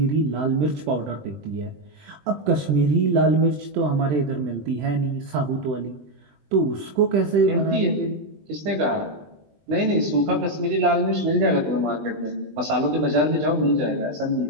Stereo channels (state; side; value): late; left; 20 ms